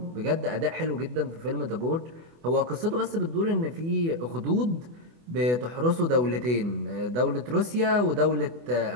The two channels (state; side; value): late; left; 24 ms